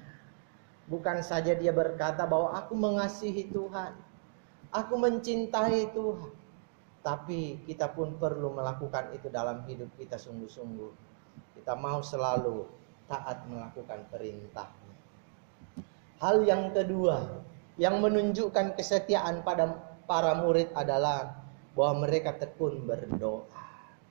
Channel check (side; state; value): left; silent; digital silence